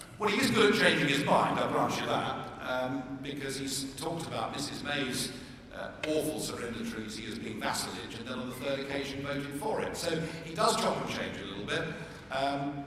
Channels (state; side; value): identical; both; correlation 1.00